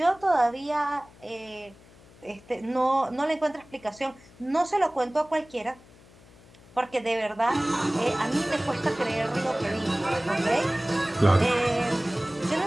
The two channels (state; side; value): noise; left; hum, 25 dB below the sound